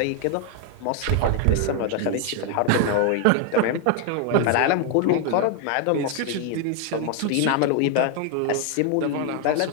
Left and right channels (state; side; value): different; both; correlation 0.00